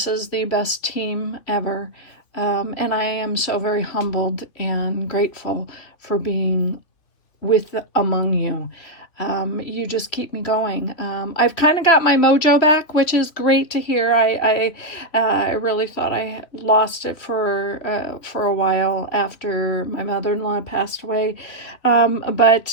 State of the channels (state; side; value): late; right; 3.0 ms